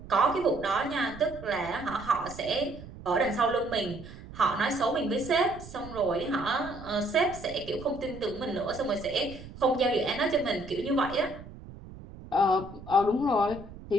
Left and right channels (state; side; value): noise; right; rumble, 15 dB below the sound